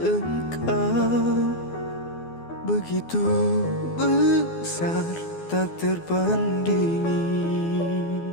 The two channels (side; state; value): right; late; 12 ms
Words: engkau begitu besar, tak terbandingi.